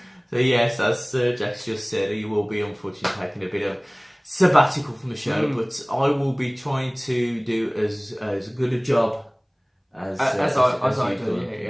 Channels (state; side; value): identical; both; correlation 1.00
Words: So yes, as Jack's just said, he will be unfortunately taking a bit of sabbatical from the show, but I will be trying to do as good a job as I do.